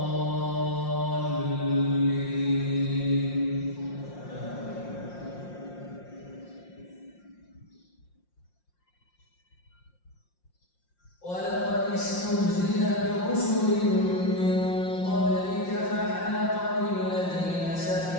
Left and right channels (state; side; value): late; right; 5.7 ms